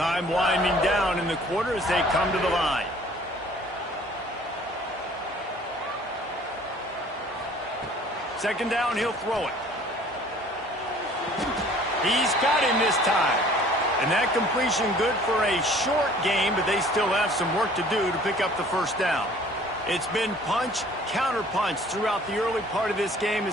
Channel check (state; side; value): normal; both; correlation 0.53